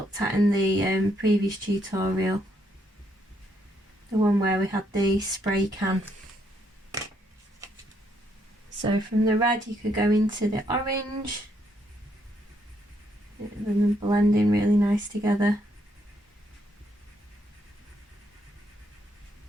at in the previous tutorial. The one where we had the spray can. So from the red you could go into the orange, and then blending really nice together.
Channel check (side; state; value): both; normal; correlation 0.74